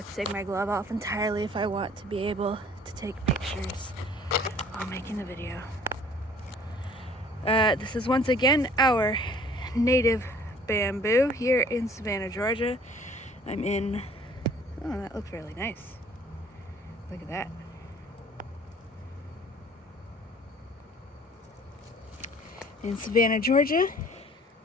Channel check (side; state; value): both; normal; correlation 0.54